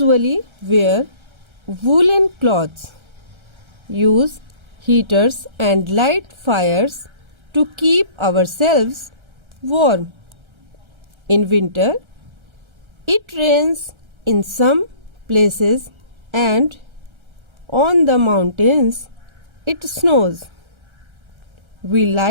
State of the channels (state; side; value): late; left; 1.3 ms